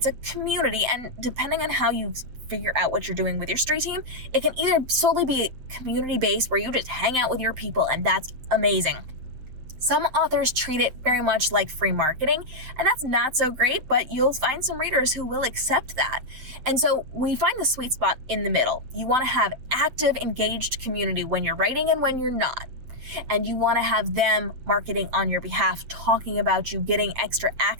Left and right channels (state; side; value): late; left; 8.0 ms